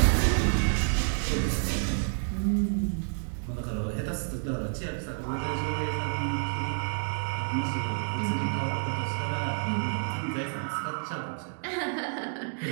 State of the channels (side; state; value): left; silent; digital silence